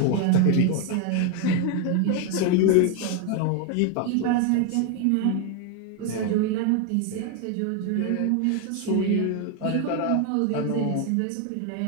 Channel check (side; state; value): both; different; correlation 0.01